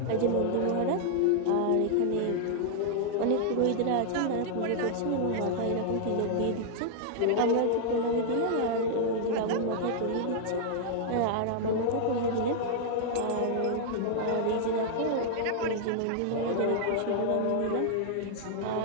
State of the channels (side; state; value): both; different; correlation -0.01